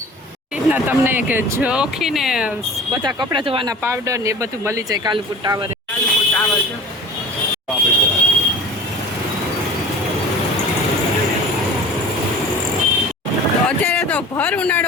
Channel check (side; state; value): both; normal; correlation 0.39